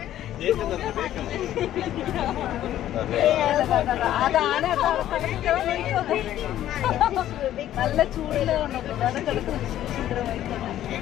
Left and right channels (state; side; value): quieter; right; 12.4 dB